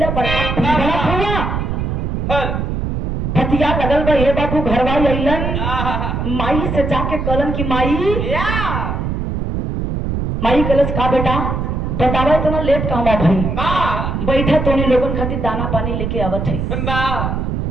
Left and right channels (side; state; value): right; noise; rumble, 2 dB below the sound